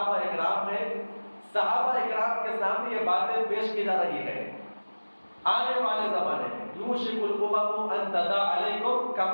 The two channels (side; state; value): both; inverted; correlation -1.00